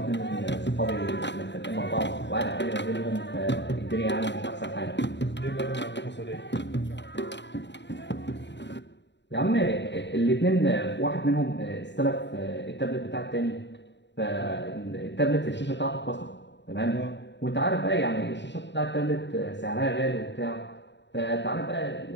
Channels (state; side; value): late; right; 0.52 ms